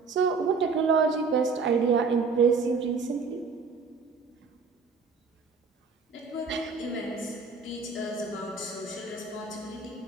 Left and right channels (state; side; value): quieter; left; 4.7 dB